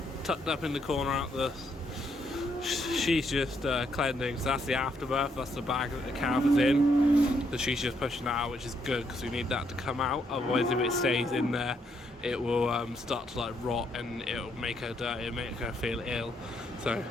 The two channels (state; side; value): normal; both; correlation 0.74